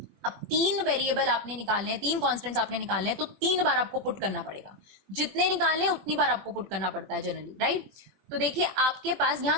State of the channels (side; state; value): left; late; 21 ms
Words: अब तीन वेरिएबल आपने निकालने हैं, तीन कॉन्स्टेंट्स आपने निकालने हैं, तो तीन बार आपको पुट करना पड़ेगा। जितने निकालने हैं उतनी बार आपको पुट करना पड़ता है जनरली, राइट। तो देखिए आपके पास यहाँ